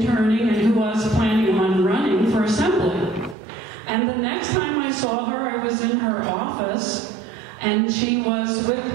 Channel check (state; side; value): drops out; left; at 3.4 s